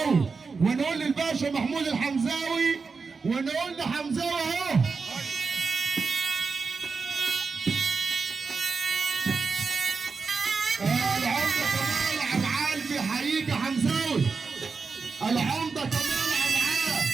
ونقول للباشا محمود الحمزاوي، ونقول لحمزاوي اهو. العمده كمال عبعال بيحييك يا حمزاوي، العمده كمال عبعال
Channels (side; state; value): left; quieter; 4.8 dB